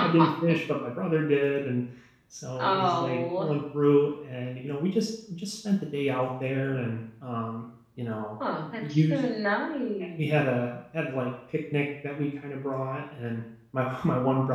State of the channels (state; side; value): identical; both; correlation 1.00